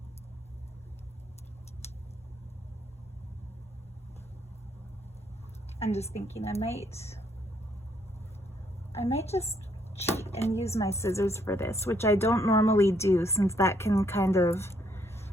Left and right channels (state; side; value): normal; both; correlation 0.70